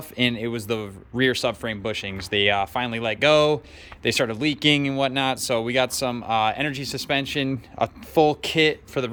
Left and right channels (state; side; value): identical; both; correlation 1.00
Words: and it was the rear subframe bushings. They finally let go. They started leaking and whatnot. So we got some energy suspension, a full kit for the